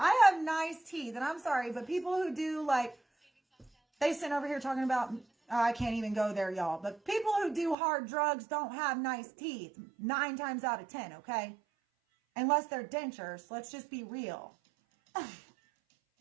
have nice teeth, and I'm sorry, but people who do they sit over here talking about, I can't even go there, y'all. But people who do hard drugs don't have nice teeth 9 times out of 10, okay? Unless they're dentures. Let's just be real.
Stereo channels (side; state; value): left; drops out; at 7.8 s